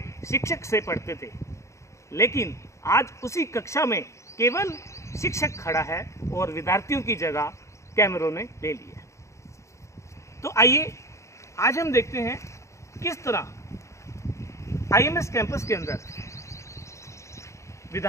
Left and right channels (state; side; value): late; right; 0.14 ms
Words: शिक्षक से पढ़ते थे, लेकिन आज उसी कक्षा में केवल शिक्षक खड़ा है और विद्यार्थियों की जगह कैमरों ने ले ली है। तो आइए आज हम देखते हैं किस तरह आईएमएस कैंपस के अंदर